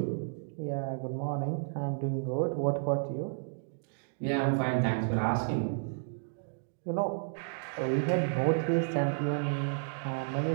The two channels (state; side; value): silent; left; digital silence